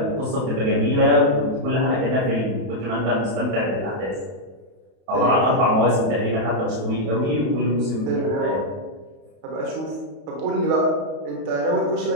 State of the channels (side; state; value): left; late; 32 ms